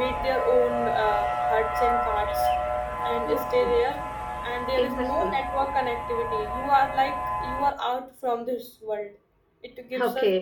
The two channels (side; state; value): both; identical; correlation 1.00